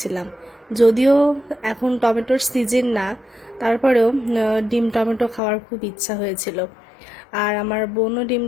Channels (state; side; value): drops out; right; at 5.4 s